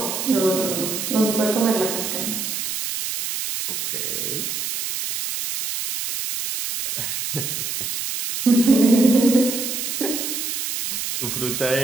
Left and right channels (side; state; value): right; noise; hiss, 3 dB below the sound